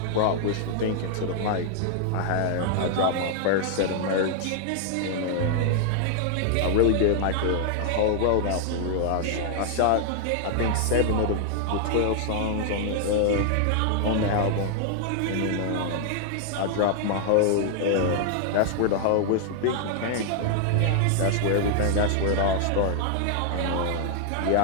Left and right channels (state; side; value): different; both; correlation 0.00